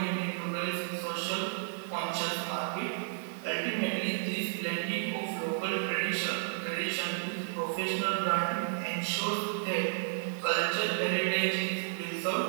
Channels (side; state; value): left; silent; digital silence